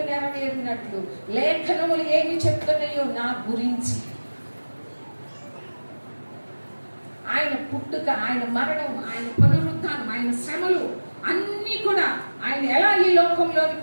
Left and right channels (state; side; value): inverted; both; correlation -1.00